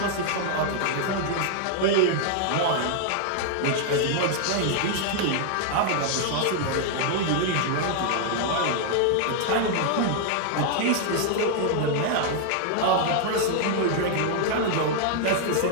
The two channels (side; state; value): both; different; correlation 0.00